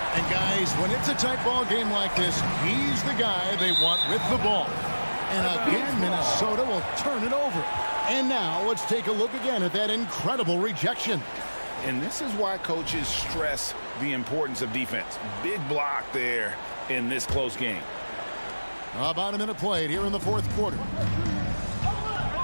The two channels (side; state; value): both; inverted; correlation -1.00